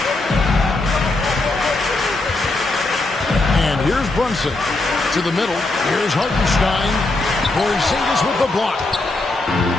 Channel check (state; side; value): quieter; right; 3.0 dB